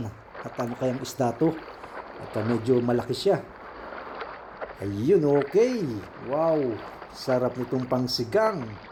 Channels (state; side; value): identical; both; correlation 1.00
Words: At ano kayang isda to? At medyo malaki siya. Ayun, okay. Wow, sarap nitong pangsigang.